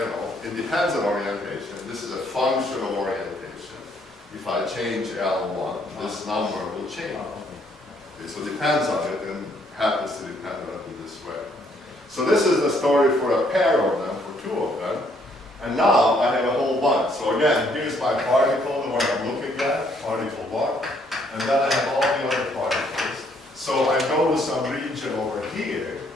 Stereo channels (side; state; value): both; normal; correlation 0.67